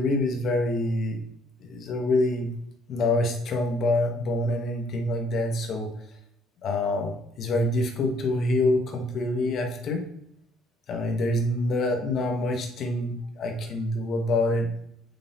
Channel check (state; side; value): normal; both; correlation 0.65